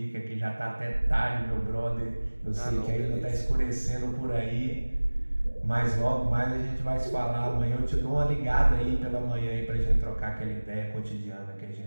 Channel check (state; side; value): inverted; both; correlation -1.00